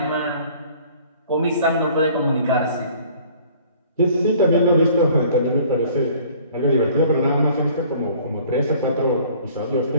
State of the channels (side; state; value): both; inverted; correlation -0.53